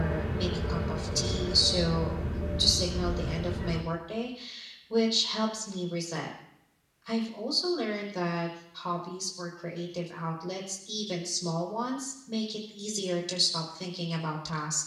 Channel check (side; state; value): both; identical; correlation 1.00